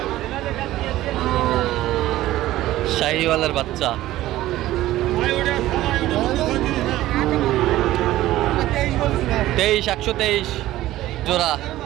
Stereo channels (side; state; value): left; quieter; 15.3 dB